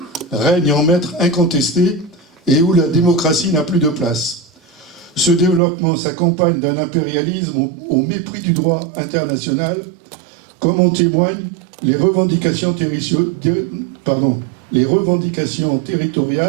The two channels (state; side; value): drops out; left; at 5.6 s